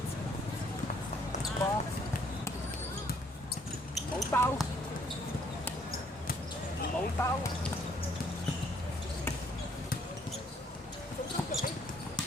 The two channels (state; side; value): normal; both; correlation 0.65